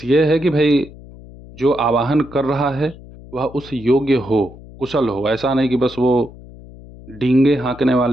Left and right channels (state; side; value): noise; left; hum, 19 dB below the sound